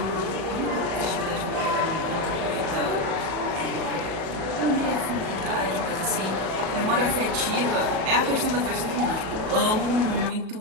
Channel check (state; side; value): late; left; 37 ms